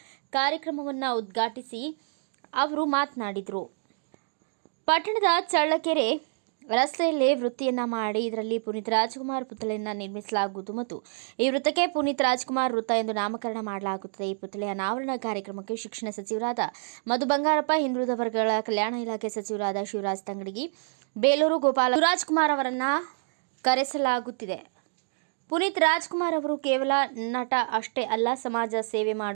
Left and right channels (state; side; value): silent; left; digital silence